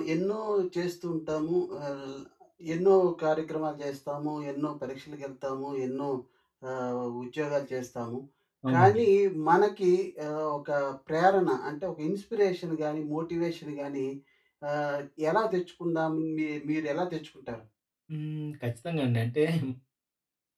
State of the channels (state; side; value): identical; both; correlation 1.00